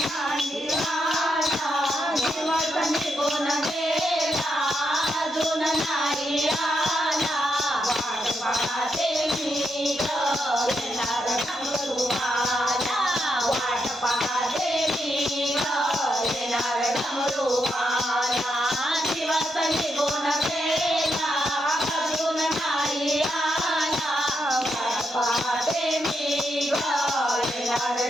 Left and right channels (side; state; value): both; normal; correlation 0.82